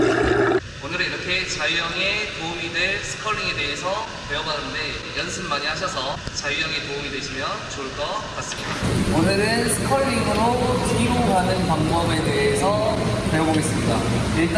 오늘은 이렇게 자유형에 도움이 될 스컬링에 대해서 배워봤는데 연습 많이 하셔서 자유형에 도움이 되시면 좋을 것 같습니다. 오늘은 스컬링으로 뒤로 가는 방법에 대해서 배워보겠습니다.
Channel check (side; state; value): both; identical; correlation 1.00